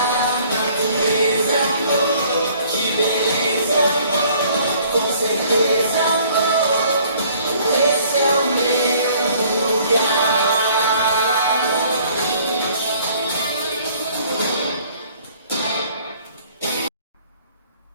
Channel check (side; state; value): both; inverted; correlation -0.57